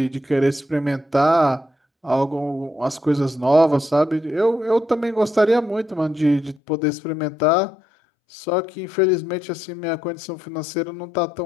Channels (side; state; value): right; drops out; at 6.6 s